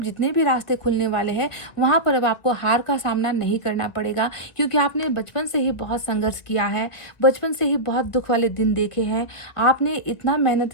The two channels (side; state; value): right; late; 2.3 ms